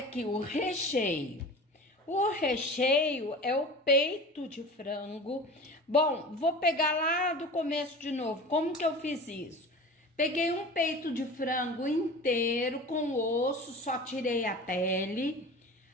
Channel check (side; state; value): both; normal; correlation 0.36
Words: o recheio. O recheio é o peito de frango. Bom, vou pegar lá do começo de novo. Como que eu fiz isso? Peguei um peito de frango inteiro com osso, só tirei a pele.